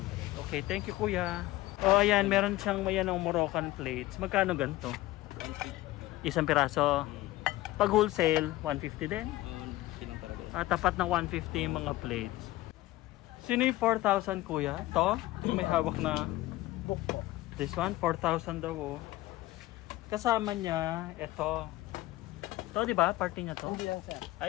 Okay, thank you kuya. Oh, ayan, meron siyang mayan ng Moroccan plates. Magkano ganito? 150. Isang piraso. Pag wholesale, 150 din. Lang talaga yan. Tapat ng 150 yung mga plates. Sino yung 4,000 kuya? To? Yung may hawak na Book po. this one, 4,000 daw oh. Kasama niya, ito. To, di ba? Party niya to? Hindi lang sir. Ah,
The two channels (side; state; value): right; quieter; 17.4 dB